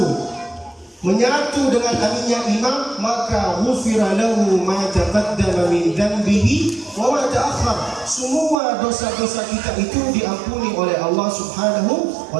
menyatu dengan aminnya imam, maka ghufira lahu ma taqaddama min dhanbihi wa ma ta'akhkhar. Semua dosa-dosa kita itu diampuni oleh Allah Subhanahu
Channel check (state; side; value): drops out; left; at 8.6 s